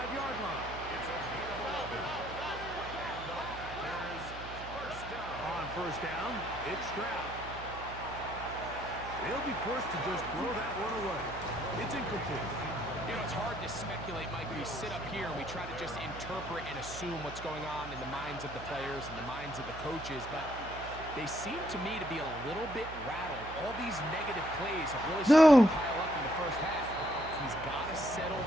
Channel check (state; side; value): noise; right; hum, 12 dB below the sound